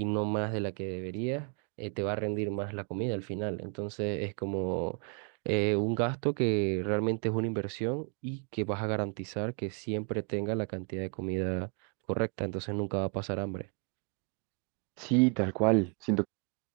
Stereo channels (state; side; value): quieter; left; 39.1 dB